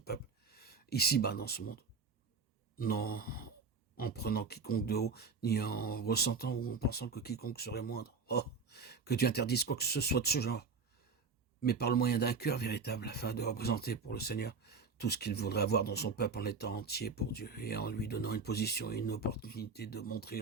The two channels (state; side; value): quieter; left; 4.9 dB